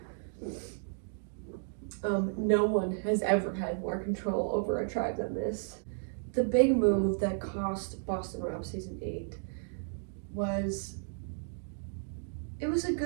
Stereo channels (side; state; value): left; silent; digital silence